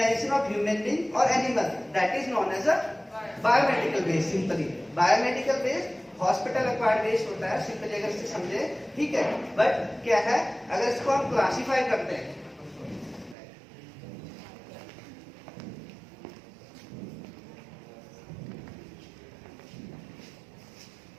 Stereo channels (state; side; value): drops out; left; at 13.4 s